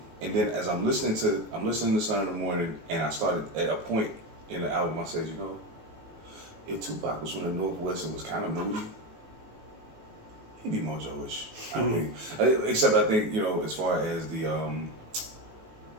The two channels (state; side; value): late; left; 19 ms